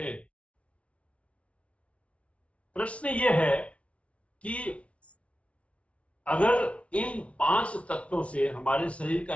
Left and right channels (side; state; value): right; late; 0.062 ms